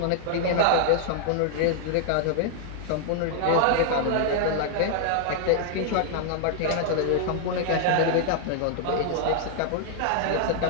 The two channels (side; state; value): both; different; correlation 0.00